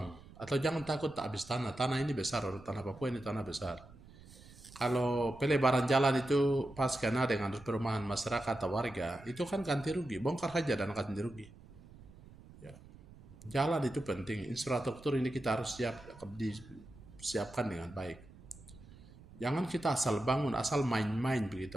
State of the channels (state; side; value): noise; right; rumble, 20 dB below the sound